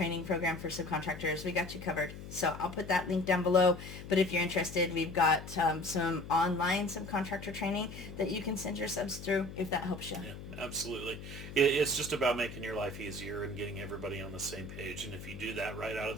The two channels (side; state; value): left; noise; hum, 12 dB below the sound